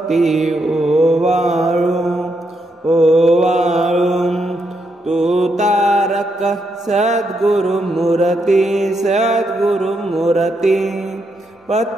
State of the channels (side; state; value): both; normal; correlation 0.80